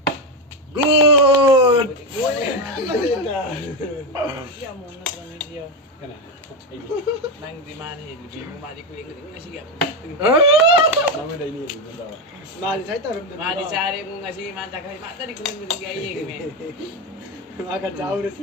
Good. Iya mau nonton video. Kana. Nang di mana ini? Bingung mati kuing ini sih gak. Nama dah ini. Mali saya tahu. Mati cari mau ngasih mata kali mata di kuing itu kayak gini. Akan jauh deh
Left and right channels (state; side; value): normal; both; correlation 0.11